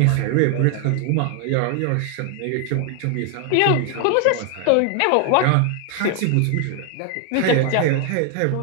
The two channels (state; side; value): different; both; correlation 0.00